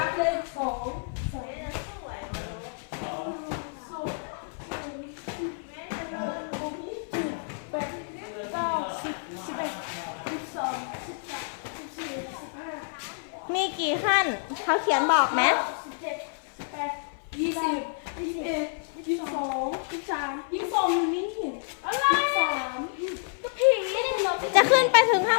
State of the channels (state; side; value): silent; right; 55 dB below the other